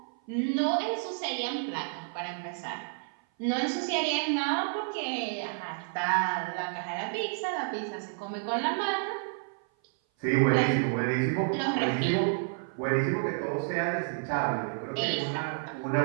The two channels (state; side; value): silent; left; 55 dB below the other